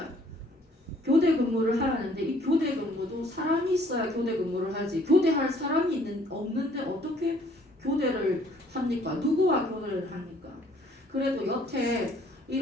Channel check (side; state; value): both; normal; correlation 0.60